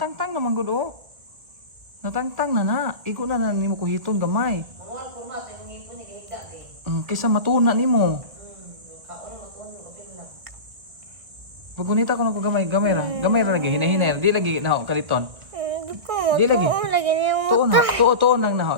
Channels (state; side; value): late; left; 1.5 ms